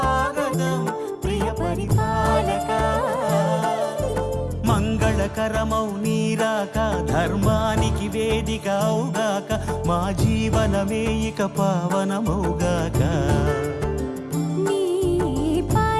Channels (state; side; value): identical; both; correlation 1.00